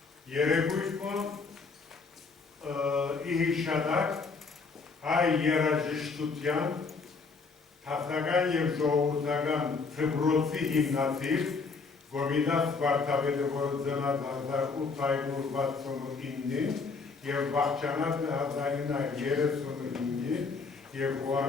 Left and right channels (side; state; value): right; quieter; 4.6 dB